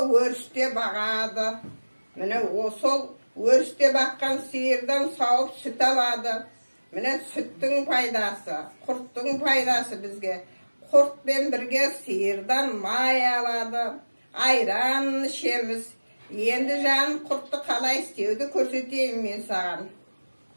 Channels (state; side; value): inverted; both; correlation -1.00